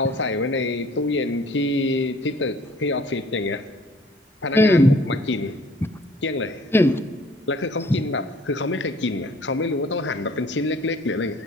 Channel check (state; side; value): normal; both; correlation 0.54